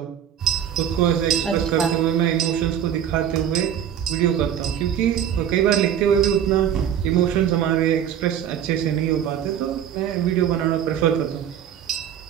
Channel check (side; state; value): left; quieter; 9.5 dB